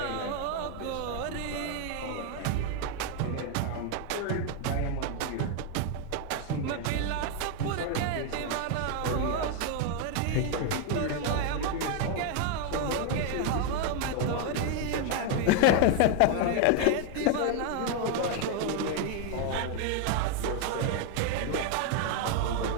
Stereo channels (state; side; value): different; both; correlation 0.01